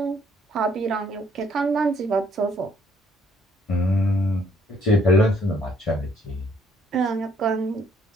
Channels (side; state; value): both; normal; correlation 0.66